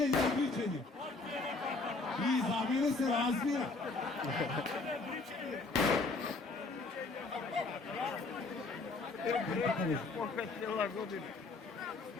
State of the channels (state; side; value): quieter; right; 3.6 dB